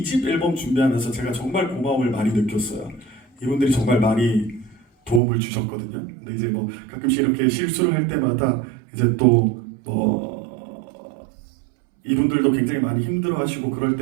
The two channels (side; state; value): left; drops out; at 5.2 s